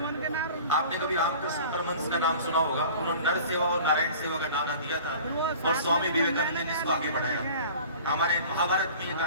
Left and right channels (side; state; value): both; inverted; correlation -0.44